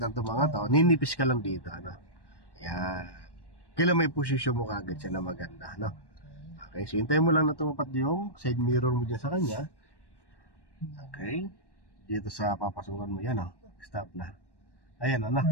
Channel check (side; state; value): right; late; 1.1 ms